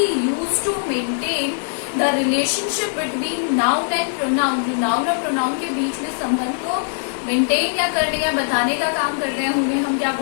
used to maintain the relationship between noun and pronoun. जो noun और pronoun के बीच में संबंध को मेंटेन या करने या बताने का काम करते हैं उन्हें हम क्या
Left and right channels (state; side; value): silent; right; 56 dB below the other